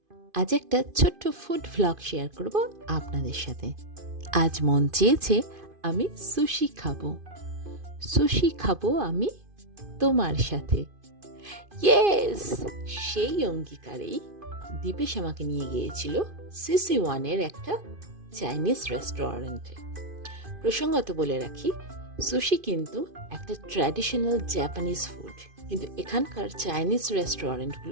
আজ একটা ছোট্ট ফুড ভ্লগ শেয়ার করব আপনাদের সাথে। আজ মন চেয়েছে আমি সুশি খাবো। সুশি খাবো আমি তোমার সাথে। ইয়েস! সেই অঙ্গীকারেই দীপেশ আমাকে নিয়ে গিয়েছিল CC1-এর একটা চাইনিজ রেস্টুরেন্টে। প্রসঙ্গত বলে রাখি, সুশি কিন্তু একটা ট্র্যাডিশনাল জাপানিজ ফুড, কিন্তু এখানকার চাইনিজ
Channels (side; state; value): left; late; 2.5 ms